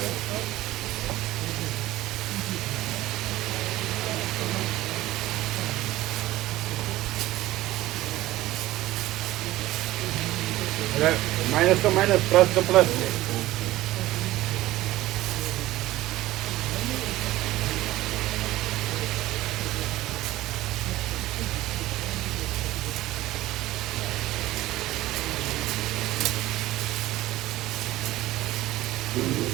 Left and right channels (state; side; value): quieter; left; 16.5 dB